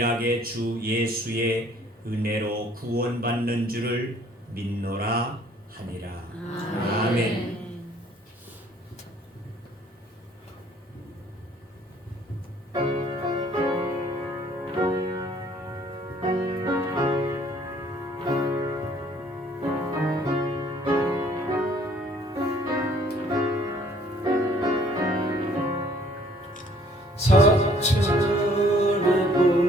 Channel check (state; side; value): normal; both; correlation 0.59